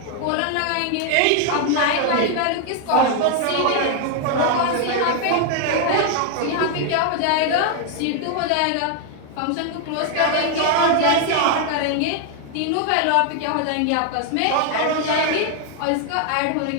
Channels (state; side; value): different; both; correlation 0.00